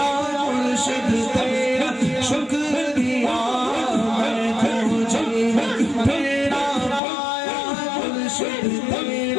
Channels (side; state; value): right; drops out; at 7.0 s